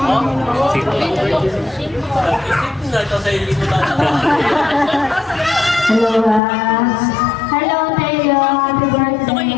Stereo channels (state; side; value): drops out; right; at 6.4 s